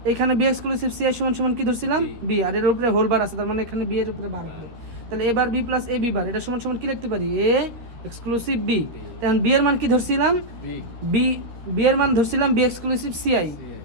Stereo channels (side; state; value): left; late; 13 ms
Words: এখানে বি এক্সক্লুসিভ সি আই সমান সমান কি ধরছিলাম? বি, আর এর উপরে হোল বার আছে, তার মানে এখানে বি এর উপরে বার হবে। তাহলে এবার B plus A B bar, এটা সমান সমান কি লিখতে পারি? A exclusive B. এখন বি এর মান কি ধরছিলাম? বি এর মান ধরছিলাম বি এক্সক্লুসিভ সি আই।